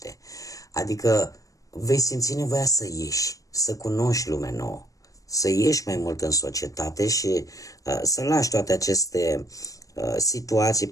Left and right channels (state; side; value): late; right; 0.16 ms